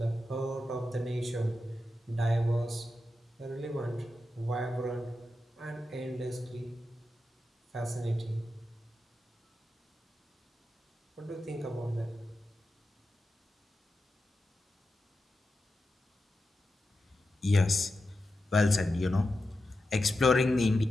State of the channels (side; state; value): both; normal; correlation 0.90